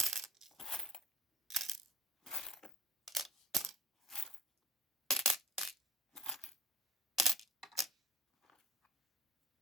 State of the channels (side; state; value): both; normal; correlation 0.45